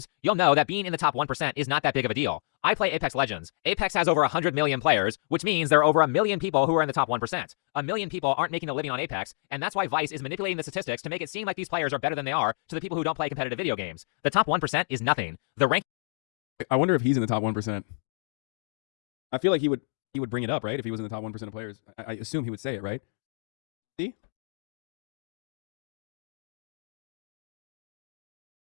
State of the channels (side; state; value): right; silent; digital silence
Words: you'll know that being in the top 1% is not that big of a deal. I play Apex Legends. Apex has over 100 million players, which means there are over 1 million people who are in the top 1%. 1 million people aren't making a living on Apex, and that's why Vice is manipulating the statistics to make it seem like these players are better than they are to the people who don't play competitive video games. The top 1% is nothing. The rank. I wonder if he's in the top 1%. I feel like he would bring it up, right? If he was in the top 1% of players. I assume he would say it, right? See?